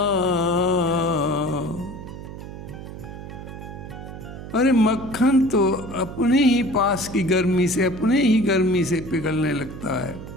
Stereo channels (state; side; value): noise; right; hum, 11 dB below the sound